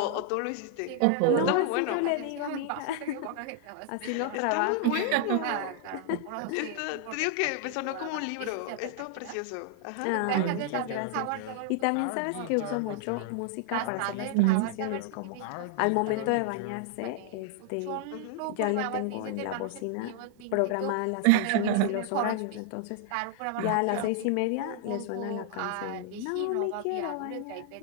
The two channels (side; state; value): both; different; correlation 0.00